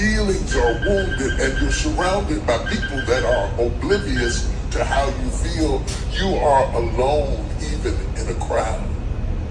are wounded and you're surrounded by people that are oblivious to how you feel, you are alone even in a crowd.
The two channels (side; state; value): both; identical; correlation 1.00